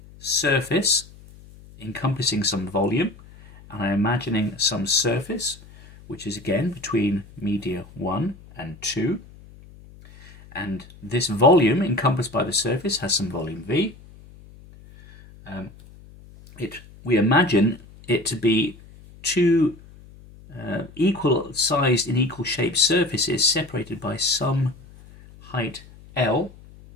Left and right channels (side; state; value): left; noise; hum, 21 dB below the sound